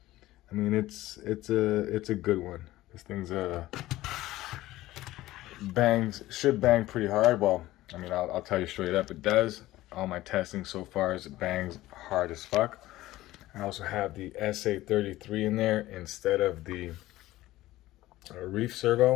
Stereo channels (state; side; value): quieter; right; 16.4 dB